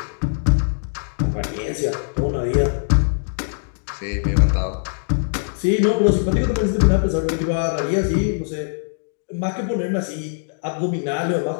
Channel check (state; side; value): silent; right; digital silence